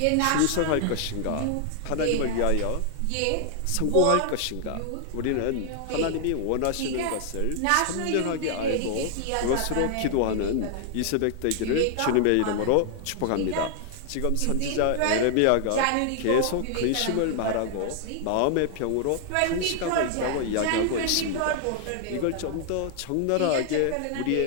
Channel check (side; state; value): both; different; correlation 0.00